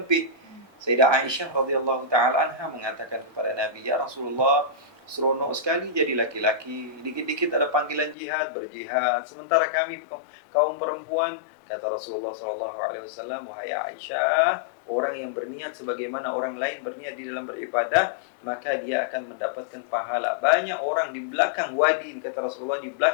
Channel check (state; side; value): drops out; right; at 8.2 s